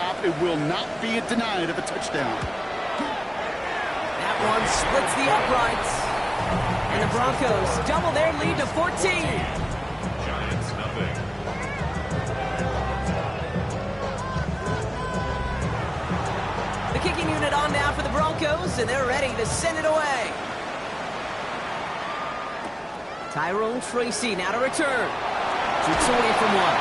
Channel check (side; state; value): both; identical; correlation 1.00